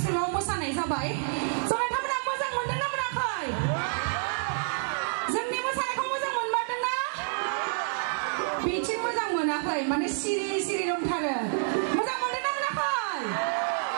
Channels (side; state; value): left; silent; 59 dB below the other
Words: मोसानाय जाबाय स' नोंथांमोना मोजां मोनदोंना मोनाखै जोंनि मोसानायखौ मोजां मोनमारदोंना बिथिं मोजां मोनाखै माने सिरि सिरि दंथारो मोजां मोनदोंना मोनाखै